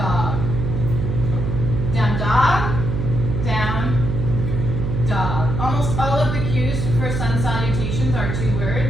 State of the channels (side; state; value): right; noise; hum, 2 dB below the sound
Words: Down, dog. Down, dog. Almost all of the cues for sun salutations are two